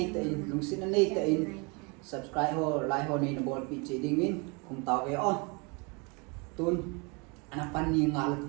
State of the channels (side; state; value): left; quieter; 30.7 dB